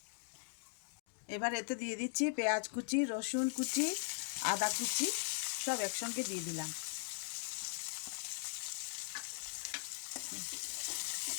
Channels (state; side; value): silent; right; digital silence